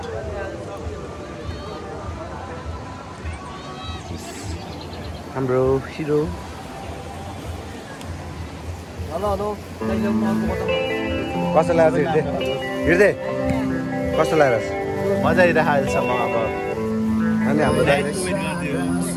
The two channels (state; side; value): identical; both; correlation 1.00